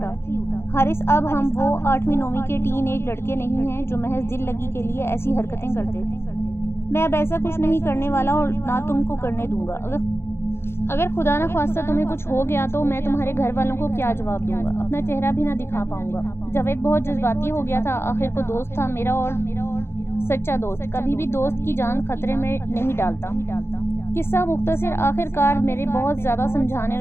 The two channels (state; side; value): late; right; 0.12 ms